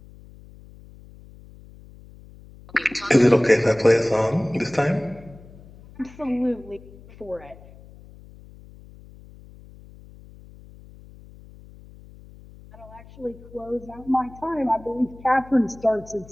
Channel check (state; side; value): noise; left; hum, 21 dB below the sound